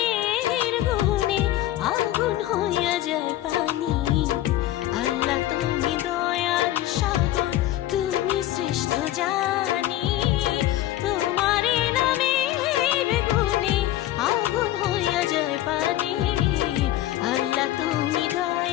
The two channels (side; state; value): right; quieter; 14.2 dB